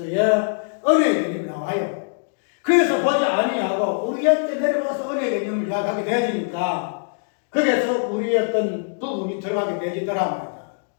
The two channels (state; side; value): silent; right; digital silence